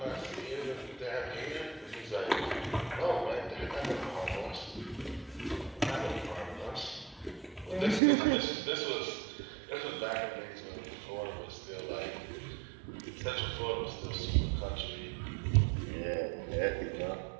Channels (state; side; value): drops out; left; at 8.0 s